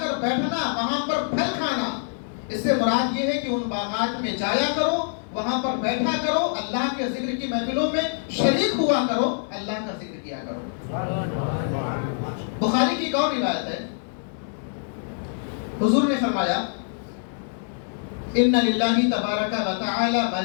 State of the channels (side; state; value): right; silent; 62 dB below the other